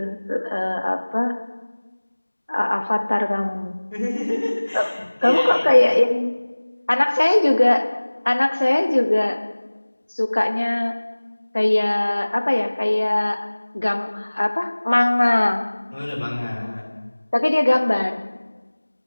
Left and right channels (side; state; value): both; inverted; correlation -1.00